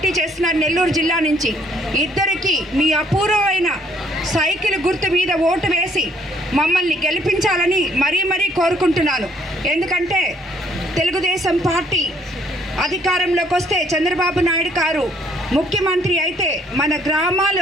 చేస్తున్నారు నెల్లూరు జిల్లా నుంచి. ఇద్దరికి మీ అపూర్వమైన సైకిల్ గుర్తు మీద ఓటు వేసి మమ్మల్ని గెలిపించాలని మరీ కోరుకుంటున్నాను. ఎందుకంటే తెలుగుదేశం పార్టీ అధికారంలోకి వస్తే చంద్రబాబు నాయుడు గారు ముఖ్యమంత్రి అయితే మన గ్రామాలు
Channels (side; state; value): both; normal; correlation 0.64